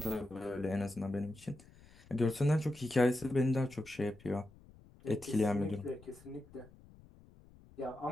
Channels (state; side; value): noise; left; rumble, 23 dB below the sound